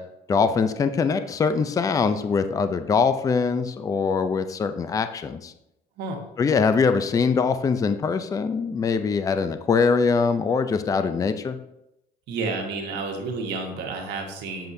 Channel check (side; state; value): right; quieter; 4.5 dB